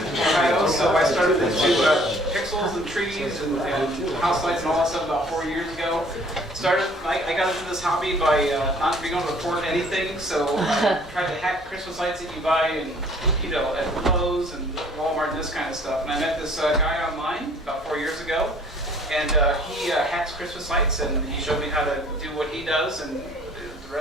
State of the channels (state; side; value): normal; both; correlation 0.56